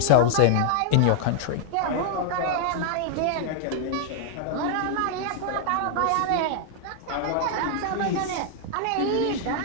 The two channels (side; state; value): both; different; correlation -0.01